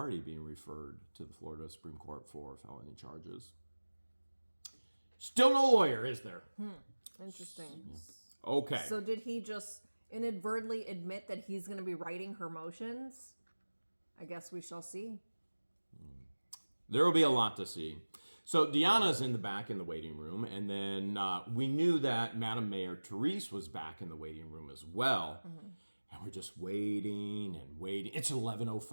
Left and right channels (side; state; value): both; inverted; correlation -1.00